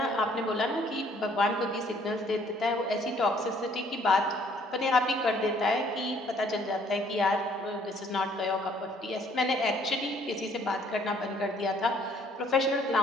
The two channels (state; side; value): normal; both; correlation 0.62